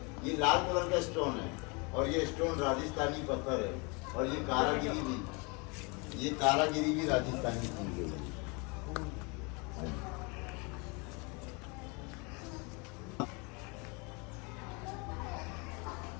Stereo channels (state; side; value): quieter; right; 30.2 dB